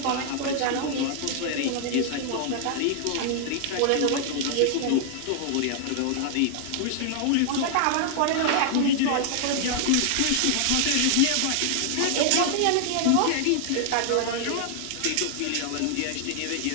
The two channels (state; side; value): different; both; correlation 0.00